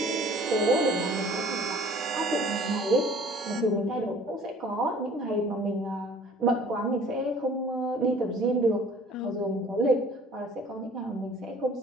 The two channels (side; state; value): both; normal; correlation 0.51